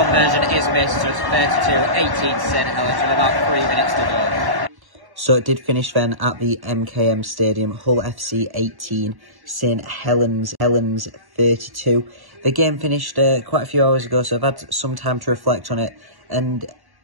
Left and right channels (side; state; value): left; late; 1.0 ms